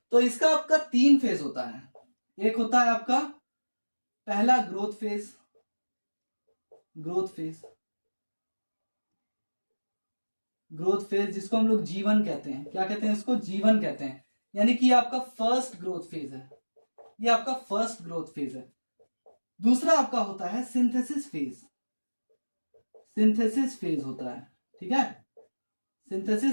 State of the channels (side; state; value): both; inverted; correlation -1.00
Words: तो इसका आपका 3 फेज होता है। एक होता है आपका पहला ग्रोथ फेज, जिसको हम लोग जीवन कहते हैं। क्या कहते हैं इसको? जीवन कहते हैं। यानी कि आपका फर्स्ट ग्रोथ फेज है, ये आपका फर्स्ट ग्रोथ फेज है। दूसरा आपका होता है सिंथेसिस फेज होता है, ठीक है।